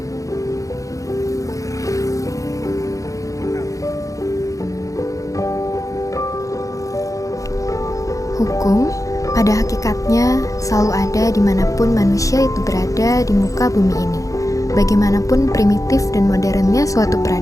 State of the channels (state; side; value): late; right; 0.16 ms